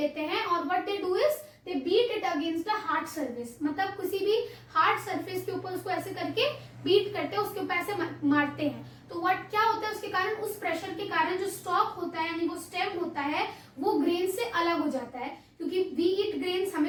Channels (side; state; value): both; identical; correlation 1.00